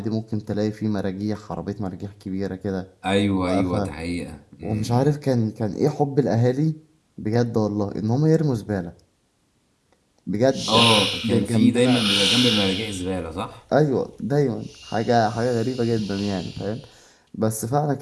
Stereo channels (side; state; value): both; identical; correlation 1.00